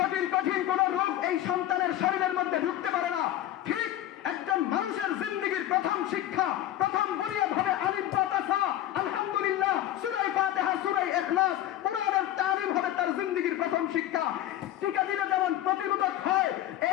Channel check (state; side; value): quieter; right; 13.0 dB